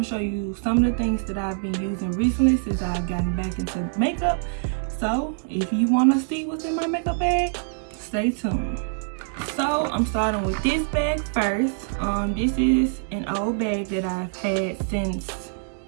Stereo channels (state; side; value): silent; left; 62 dB below the other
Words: to show you some of the things that I've been using recently since I've gotten back into makeup. So if you want to see what's in my makeup bag, stay tuned. So I'm starting with this bag first. This is an old bag that I've had since